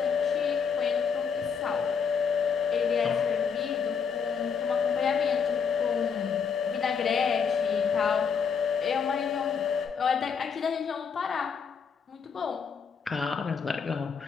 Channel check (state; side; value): quieter; right; 6.4 dB